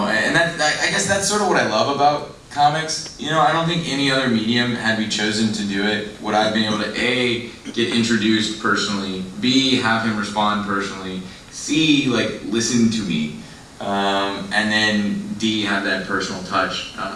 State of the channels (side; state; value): both; identical; correlation 1.00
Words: I guess that's sort of what I love about comics. I don't think any other medium, had we chosen to do it, would I've been able to A, get introduced personally, B, have him respond personally, C, listen to me, and then D, have that personal touch